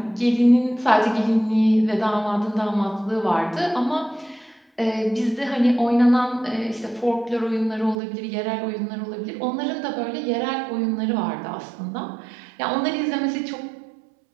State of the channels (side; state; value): left; drops out; at 8.0 s